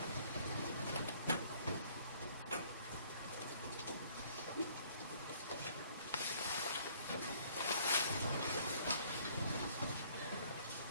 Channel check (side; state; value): both; inverted; correlation -0.59